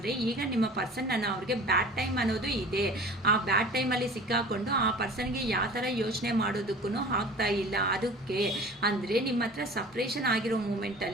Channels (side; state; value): both; normal; correlation 0.42